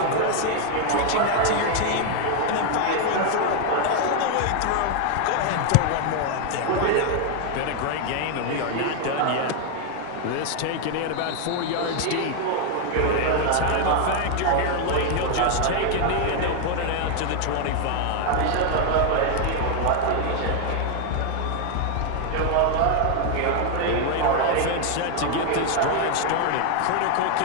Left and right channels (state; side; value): different; both; correlation 0.01